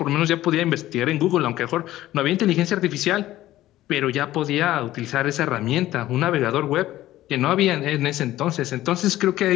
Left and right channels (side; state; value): right; quieter; 14.9 dB